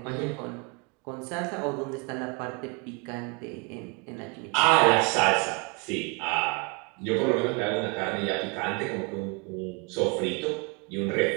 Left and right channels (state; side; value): quieter; left; 30.1 dB